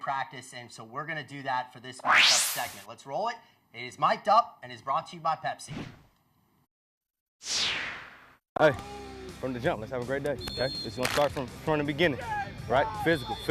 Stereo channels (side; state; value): both; identical; correlation 1.00